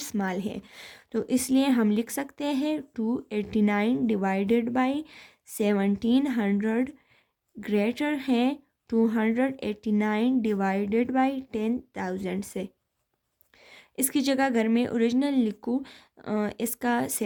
है। तो इसलिए हम लिख सकते हैं 289 डिवाइडेड बाई 1700 ग्रेटर है 289 डिवाइडेड बाई 10,000 से। इसकी जगह अगर मैं ओरिजिनल लिखूँ, इसका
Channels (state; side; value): identical; both; correlation 1.00